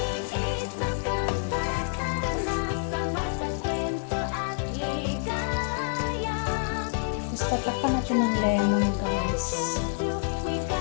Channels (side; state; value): right; silent; digital silence